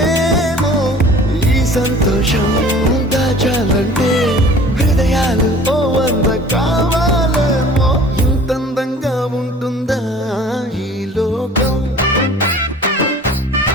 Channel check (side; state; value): both; normal; correlation 0.47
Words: ఈ సంతోషం దాచాలంటే హృదయాలు ఓ వంద కావాలేమో ఇంతందంగా ఉంటుందా ఈ లోకం